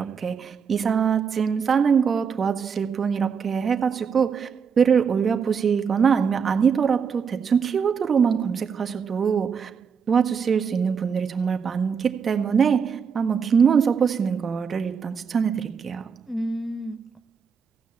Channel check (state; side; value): quieter; left; 6.4 dB